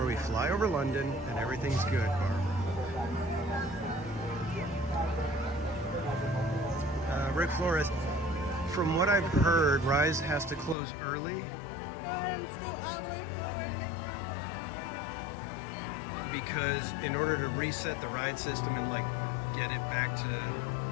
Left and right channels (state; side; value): drops out; right; at 10.8 s